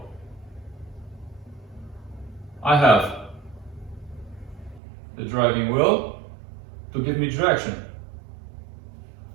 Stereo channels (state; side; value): drops out; left; at 4.8 s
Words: I have the driving wheel to give me direction.